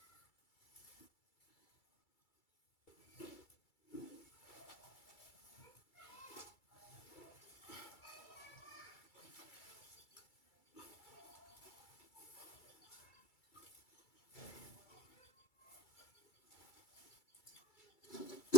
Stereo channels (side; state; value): right; late; 2.3 ms